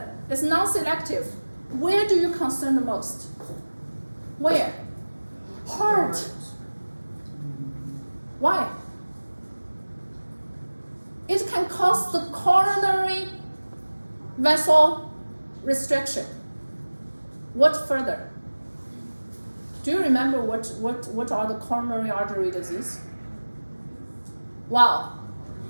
is non-selective. Where do you concern the most? Where? Heart. Why? It can cause the coronary vessel restriction. What further? Do you remember what are the coronary artery disease? Wow.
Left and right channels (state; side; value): inverted; both; correlation -1.00